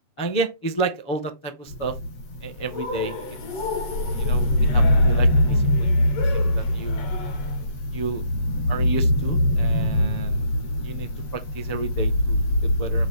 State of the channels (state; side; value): late; right; 7.8 ms